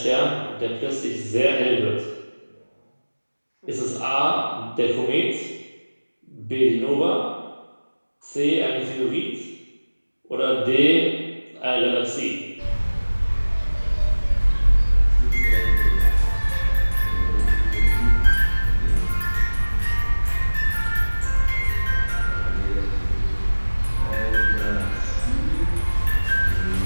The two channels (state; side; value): inverted; both; correlation -1.00